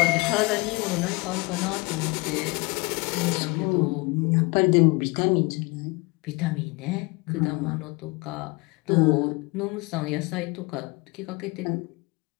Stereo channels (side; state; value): right; quieter; 25.9 dB